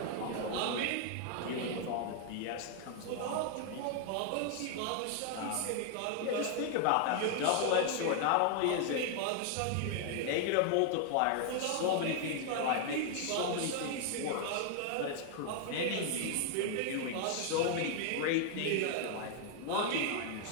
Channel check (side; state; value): both; different; correlation 0.00